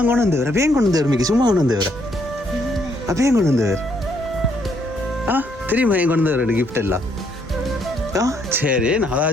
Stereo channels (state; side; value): normal; both; correlation 0.71